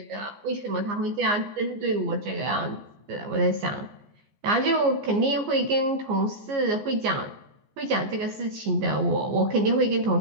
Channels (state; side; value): late; left; 15 ms